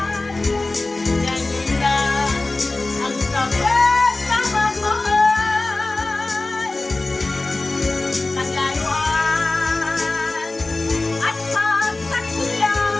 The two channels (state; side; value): quieter; right; 3.1 dB